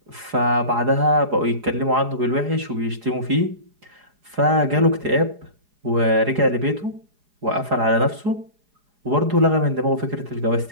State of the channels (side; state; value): left; late; 4.8 ms